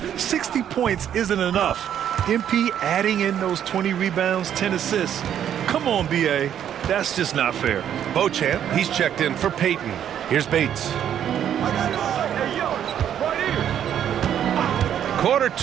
60 points isn't enough. MP adding in those 20 rebounds, 10 assists. Come on, BA. That's just not fair. Beauchamp, he's checked in for Peyton. Here's Bates. Quarter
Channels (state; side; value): quieter; left; 9.8 dB